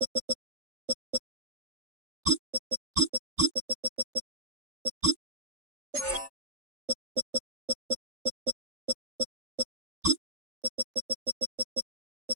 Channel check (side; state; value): left; late; 3.4 ms